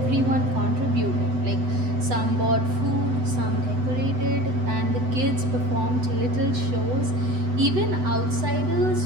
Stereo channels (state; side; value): late; left; 8.0 ms